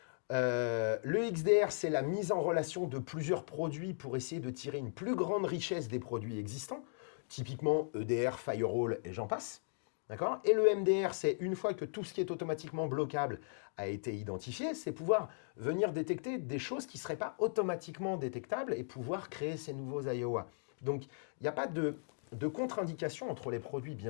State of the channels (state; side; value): silent; right; digital silence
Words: Le XDR, c'est la mise en relation de plusieurs produits pour essayer de tirer une plus grande richesse des produits existants, typiquement EDR, Firewall et j'en passe. D'accord ? Et le MDR, c'est une fois que tout ce qui est automatiquement bloquable a été identifié, c'est pouvoir venir détecter des choses qui ne seraient pas automatiquement détectables et pouvoir créer ces nouveaux IOA. Donc, il n'y a pas de contre-indication entre les produits,